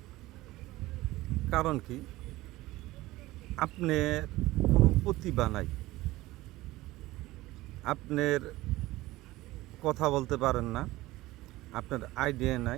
কারণ কি? আপনার কোনো প্রতিভা নাই, আপনার কথা বলতে পারেন না, আপনার আইডিয়া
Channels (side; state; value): left; quieter; 18.2 dB